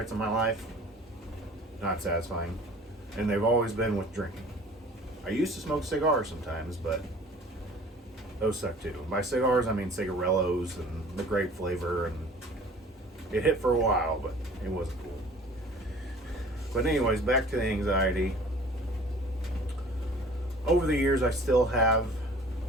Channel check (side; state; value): both; normal; correlation 0.48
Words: in my life. Not satisfying. And they've always been with drinking. I used to smoke cigars sometimes, but those suck too. By cigars, I mean cigarellos and the grape flavor, and it hit for a while, but it wasn't cool. But anyways, back to the anxiety. Over the years, I still have